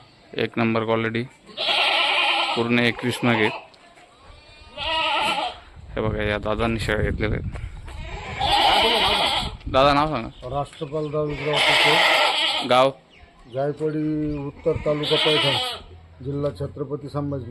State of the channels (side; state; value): both; identical; correlation 1.00